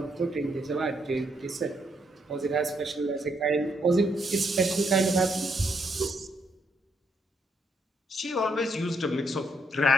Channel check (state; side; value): normal; both; correlation 0.75